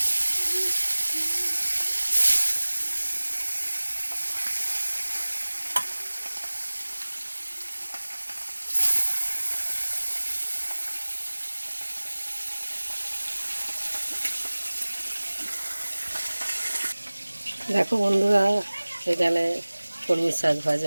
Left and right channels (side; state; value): both; inverted; correlation -1.00